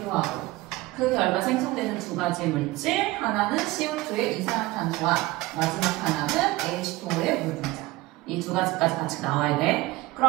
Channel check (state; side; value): quieter; left; 19.3 dB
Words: 그 결과 생성되는 두 가지 물질, 하나는 CO2의 이산화탄소와 마지막 하나는 H2O의 물 분자. 이 두 가지까지 같이 나와야 돼.